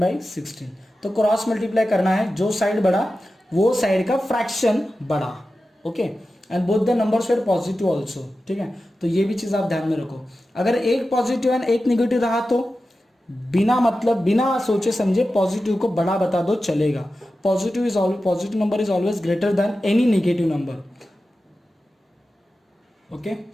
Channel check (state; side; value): normal; both; correlation 0.93